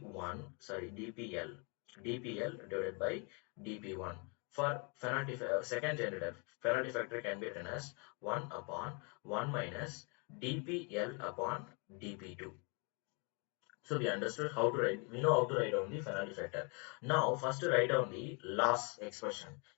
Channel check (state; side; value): quieter; right; 34.7 dB